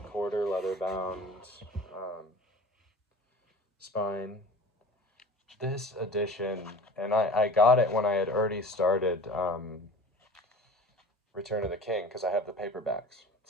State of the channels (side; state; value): both; normal; correlation 0.40